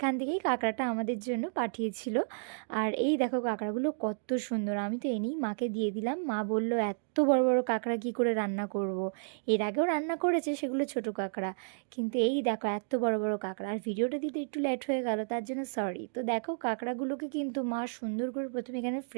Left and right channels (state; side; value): silent; left; digital silence